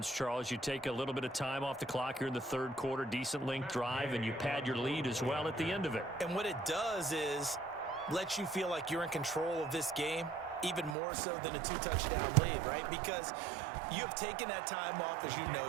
Charles. You take a little bit of time off the clock here in the third quarter, decent length drive, and you pad your lead as well at the end of it. And what it does is lets you feel like you're in control of this game, even more so than a 2-touchdown lead, right? Because you have taken that time off, as you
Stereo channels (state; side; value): drops out; left; at 11.0 s